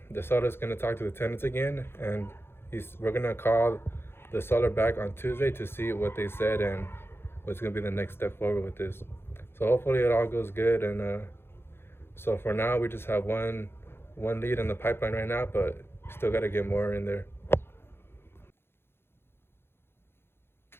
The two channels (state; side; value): late; right; 0.11 ms